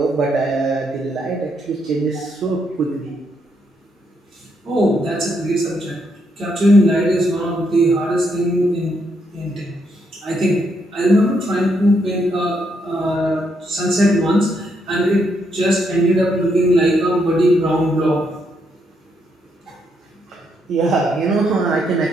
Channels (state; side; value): normal; both; correlation 0.77